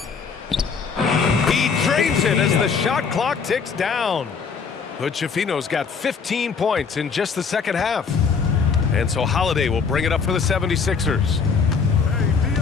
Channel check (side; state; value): right; quieter; 5.6 dB